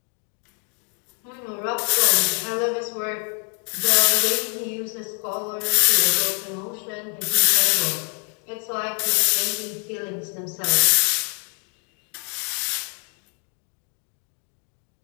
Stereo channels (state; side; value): quieter; right; 34.8 dB